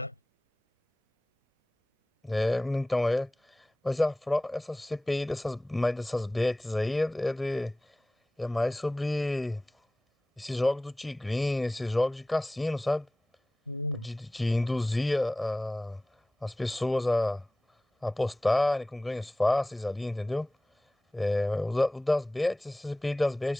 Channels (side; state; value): both; normal; correlation 0.98